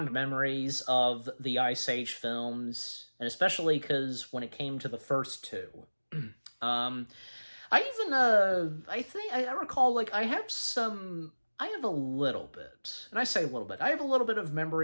memories of the Ice Age films, and especially because when it came to the first two. I recall, like, I have a little bit, and I say a little bit, I have a little bit of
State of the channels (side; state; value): both; inverted; correlation -1.00